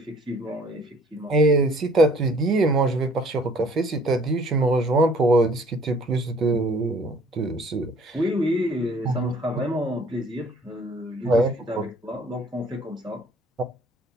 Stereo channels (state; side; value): normal; both; correlation 0.56